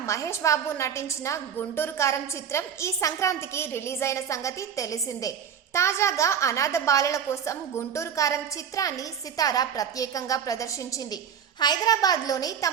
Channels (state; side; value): quieter; left; 8.0 dB